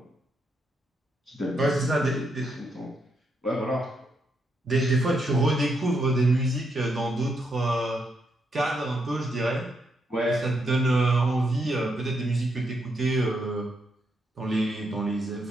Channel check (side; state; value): both; normal; correlation 0.79